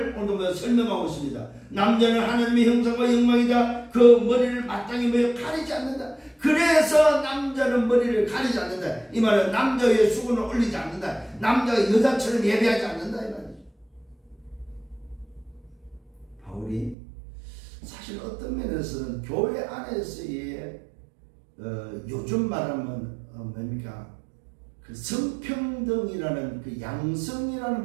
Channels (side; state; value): left; drops out; at 16.9 s